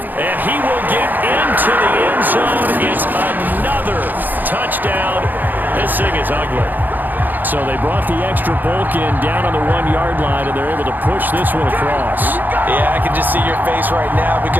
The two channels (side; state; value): left; late; 0.087 ms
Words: he will get into the end zone. It's another touchdown. This thing is ugly. So they brought the extra bulk in down on the 1-yard line, and they're able to push this one across. Yeah, I can just see your face right now